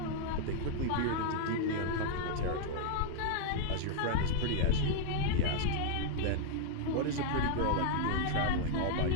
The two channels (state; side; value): different; both; correlation 0.00